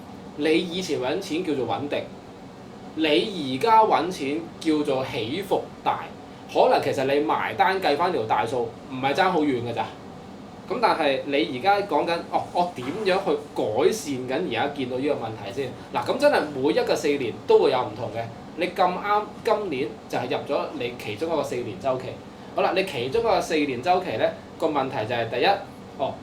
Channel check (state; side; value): identical; both; correlation 1.00